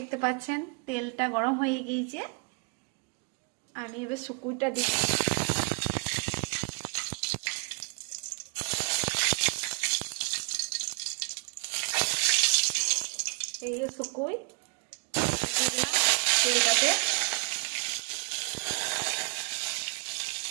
পাচ্ছেন তেলটা গরম হয়ে গিয়েছে, আমি এবার শুকুইটা দিচ্ছি। এই যে শুকুই দিয়ে দিলাম তেলটাতে।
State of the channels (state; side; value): quieter; left; 34.3 dB